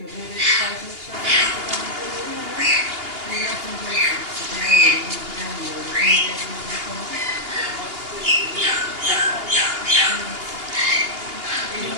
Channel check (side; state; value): left; late; 2.8 ms